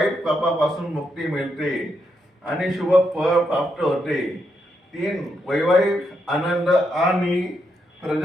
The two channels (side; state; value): both; normal; correlation 0.81